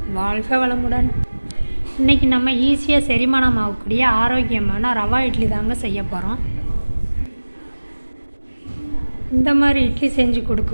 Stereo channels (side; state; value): both; inverted; correlation -1.00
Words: வாழ்க வளமுடன். இன்றைக்கி நம்ம ஈஸியாக செரிமானம் ஆகக்கூடிய ஆரோக்கியமான ரவா இட்லி தாங்க செய்ய போகிறோம். இந்த மாதிரி இட்லி செஞ்சு